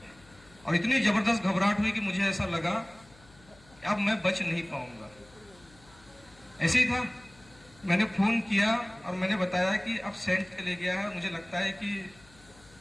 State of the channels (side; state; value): left; noise; hum, 26 dB below the sound